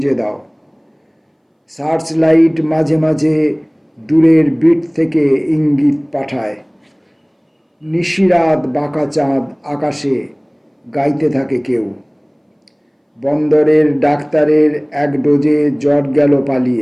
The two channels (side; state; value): both; identical; correlation 1.00